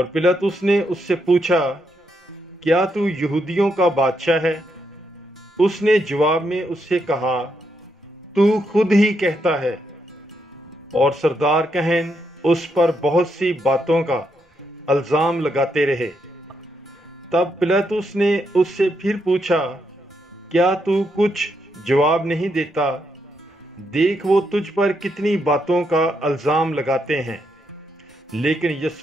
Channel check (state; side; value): normal; both; correlation 0.79